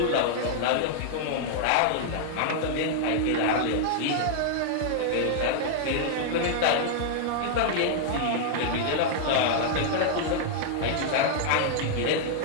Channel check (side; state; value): both; different; correlation -0.01